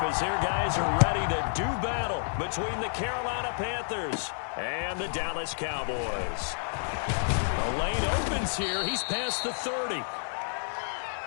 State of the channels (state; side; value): silent; right; digital silence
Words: as their guys are ready to do battle between the Carolina Panthers and the Dallas Cowboys. The lane opens here. He's past the 30.